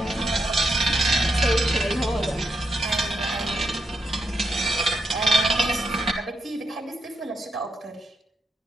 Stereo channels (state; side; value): normal; both; correlation 0.82